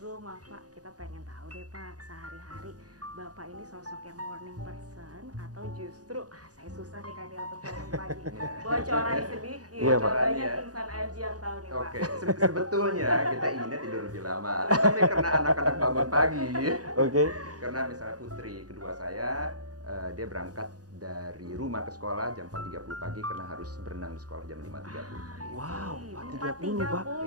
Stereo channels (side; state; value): left; late; 0.68 ms